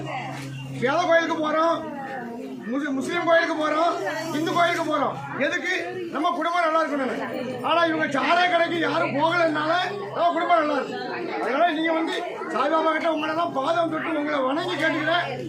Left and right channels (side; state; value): both; identical; correlation 1.00